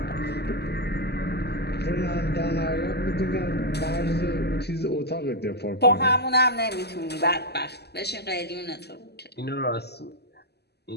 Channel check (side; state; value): right; late; 0.48 ms